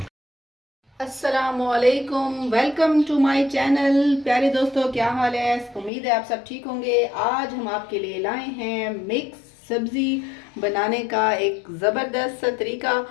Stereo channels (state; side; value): drops out; right; at 5.9 s